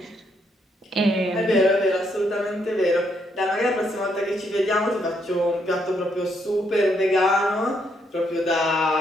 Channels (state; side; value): normal; both; correlation 0.75